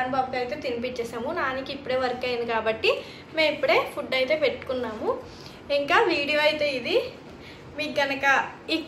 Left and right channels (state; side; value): identical; both; correlation 1.00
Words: బాబుకి అయితే తినిపించేసాము. నానికి ఇప్పుడే వర్క్ అయింది కాబట్టి మేము ఇప్పుడే ఫుడ్ అయితే పెట్టుకున్నాము. ఇంకా వీడియో అయితే ఇది. మీకు కనుక ఈ